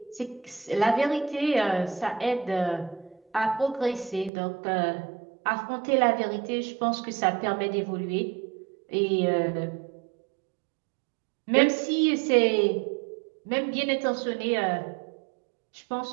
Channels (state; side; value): drops out; left; at 4.3 s